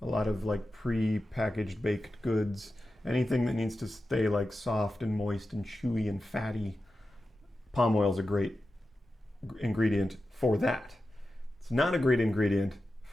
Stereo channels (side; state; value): both; normal; correlation 0.92